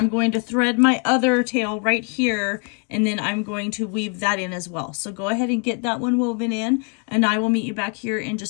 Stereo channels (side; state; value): right; quieter; 38.0 dB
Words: going to thread my other tail right here, and then I'm going to weave that in as well. So go ahead and get that one woven in, and I will meet you back here in